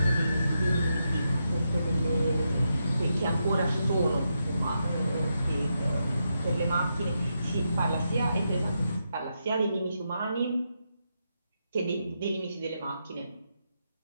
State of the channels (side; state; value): both; inverted; correlation -0.84